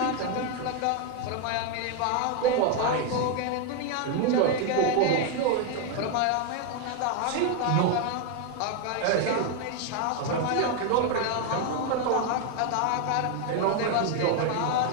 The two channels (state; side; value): different; both; correlation 0.01